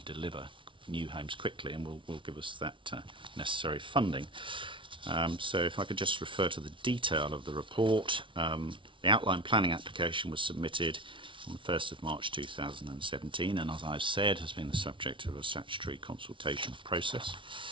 to deliver new homes quickly, and will give us that necessary funding. So if I could just refer to the detail of the report. The outline planning application was submitted on the 1st of March 2017, and as I've said, has been the subject of a statutory consultation process.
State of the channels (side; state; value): left; late; 0.25 ms